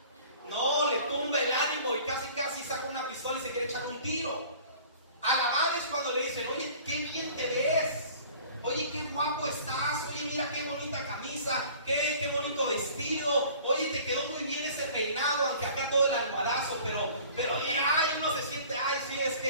No, le tumba el ánimo y casi saca una pistola y se quiere echar un tiro. Alabar es cuando le dicen: oye, qué bien te ves. Oye, qué guapo estás. Oye, mira qué bonita camisa. Qué bonito vestido. Oye, te quedó muy bien ese peinado, aunque acá todo el almohadazo. Pero ay, uno se siente: ay, sí, es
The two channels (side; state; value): both; inverted; correlation -0.48